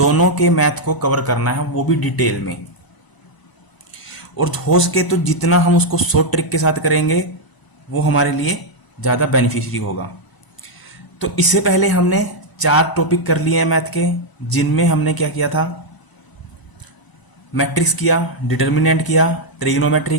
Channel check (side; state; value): right; late; 1.0 ms